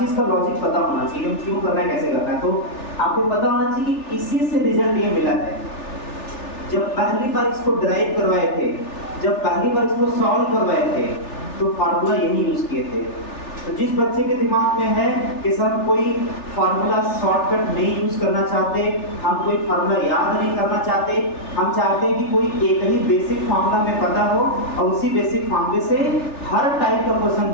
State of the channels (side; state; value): right; late; 3.4 ms